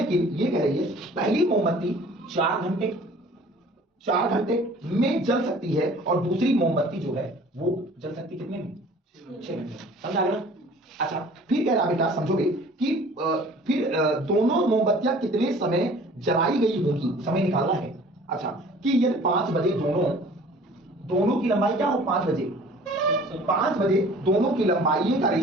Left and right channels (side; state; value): both; normal; correlation 0.49